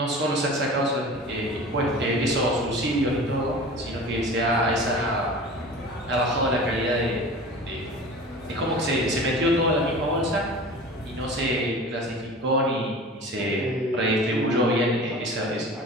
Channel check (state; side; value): normal; both; correlation 0.38